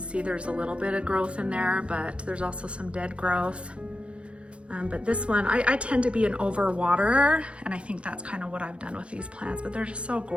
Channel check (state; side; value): late; left; 0.059 ms